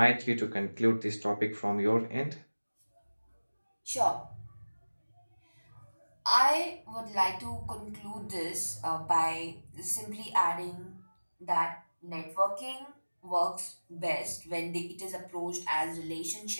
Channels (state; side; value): inverted; both; correlation -1.00